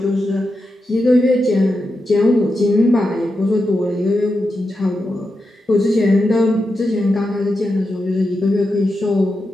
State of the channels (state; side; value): normal; both; correlation 0.88